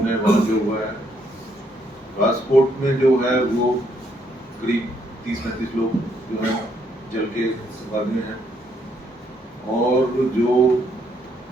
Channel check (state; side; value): normal; both; correlation 0.72